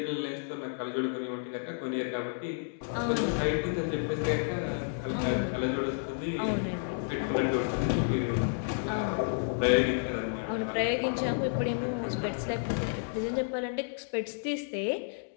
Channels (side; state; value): right; silent; digital silence